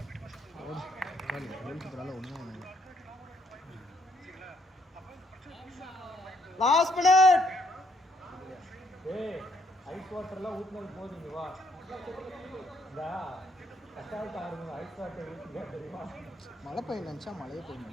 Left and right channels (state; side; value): normal; both; correlation 0.69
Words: வீட்டு பசங்க ஒன்றும் சரிங்களா? அப்போ லாஸ்ட் மினிட். ஏய் ஐஸ் வாட்டர்லாம் ஊத்துனது போதுங்க வா. இந்த கஷ்டால் ஆடுங்க ஐஸ் வாட்டர் ஊற்றுங்க தெரியுமா? மழை பெய்ய நினச்சா மழையே பெய்ய